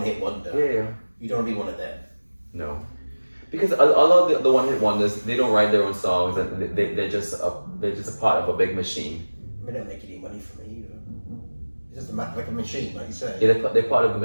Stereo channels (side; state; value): both; inverted; correlation -1.00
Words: wonder. Yeah. You don't want to be one of them. No, because a lot of the one-hit wonders, they don't write their own songs, and they're just a part of a big machine. They don't make any money for me either. It's just like a machine, like you say. Yeah, they're part of the